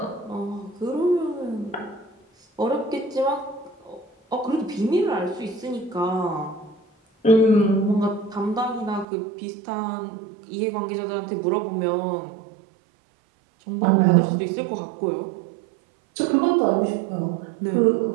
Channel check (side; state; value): left; drops out; at 9.1 s